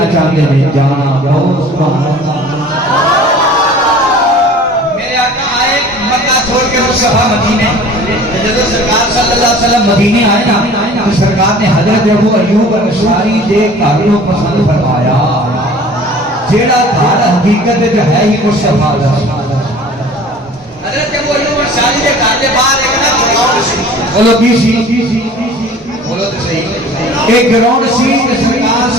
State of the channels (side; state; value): both; normal; correlation 0.46